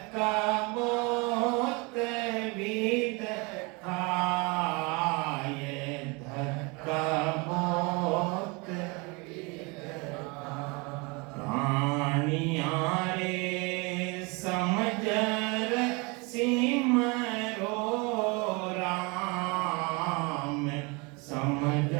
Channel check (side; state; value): left; quieter; 28.6 dB